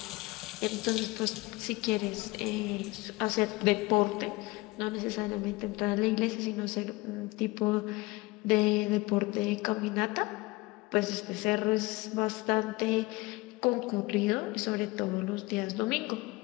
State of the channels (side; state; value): right; quieter; 22.0 dB